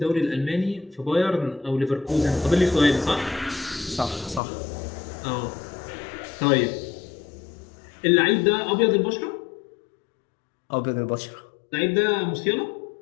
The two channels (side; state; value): right; drops out; at 4.4 s